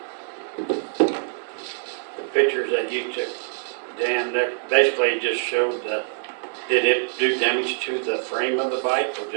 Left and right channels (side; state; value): left; silent; digital silence